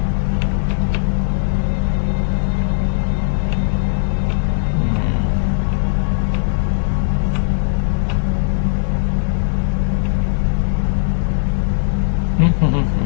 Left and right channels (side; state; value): right; silent; 65 dB below the other